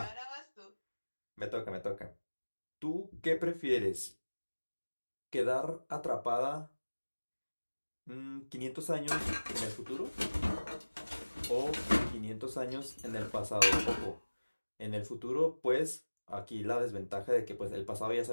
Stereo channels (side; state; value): both; inverted; correlation -1.00